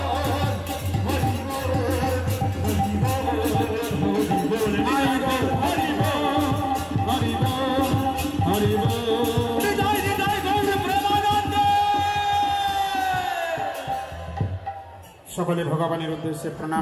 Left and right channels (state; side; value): identical; both; correlation 1.00